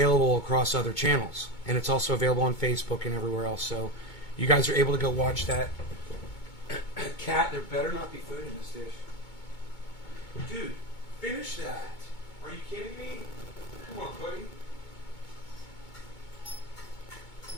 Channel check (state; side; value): late; right; 2.2 ms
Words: across other channels. And it's also available on Facebook and everywhere else. So you guys are able to go watch that. Cat, there better not be food in this dish. Dude, finish that. Are you kidding me? Come on, buddy.